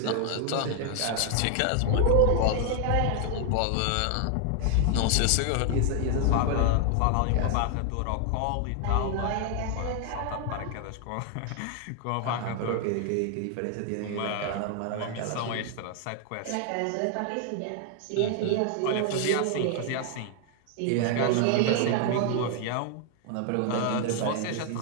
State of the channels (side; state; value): both; different; correlation 0.00